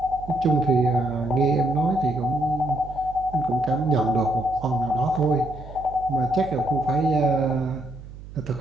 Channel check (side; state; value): right; noise; hum, 15 dB below the sound